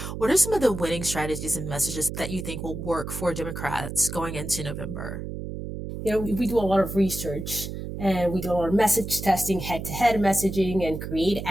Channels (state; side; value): noise; right; hum, 7 dB below the sound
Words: What are some of the winning strategies and messages that you think will work for Democrats going into November? We do a lot of research and we do a lot of message testing, head-to-head messaging, and create